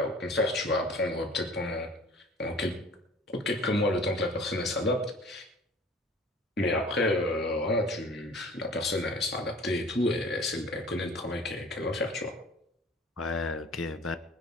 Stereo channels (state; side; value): normal; both; correlation 0.47